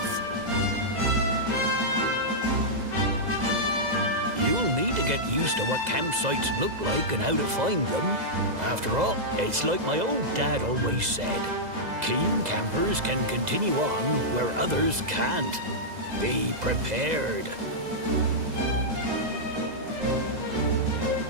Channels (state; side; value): late; left; 2.0 ms